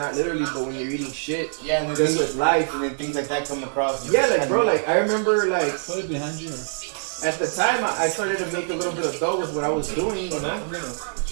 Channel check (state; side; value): silent; left; digital silence